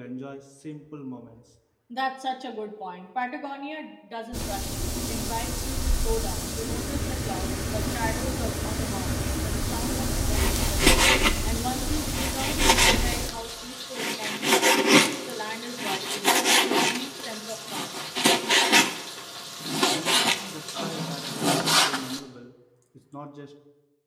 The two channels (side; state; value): both; identical; correlation 1.00